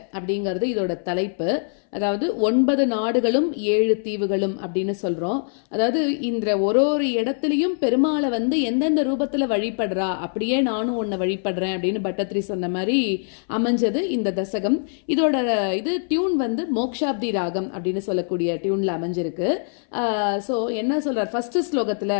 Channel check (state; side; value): silent; right; 63 dB below the other